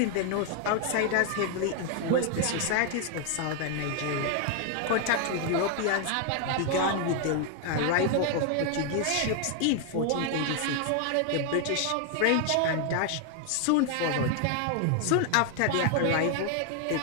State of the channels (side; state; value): both; different; correlation 0.00